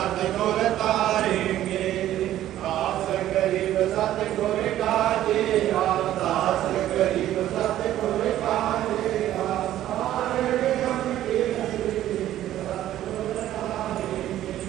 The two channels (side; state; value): left; quieter; 12.9 dB